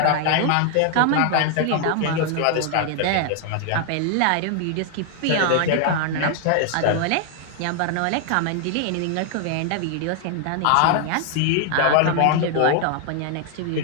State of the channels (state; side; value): different; both; correlation 0.00